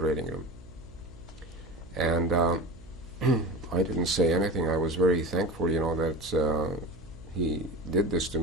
room. And I didn't say anything. I was very thankful, that he did this to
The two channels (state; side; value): noise; right; hum, 22 dB below the sound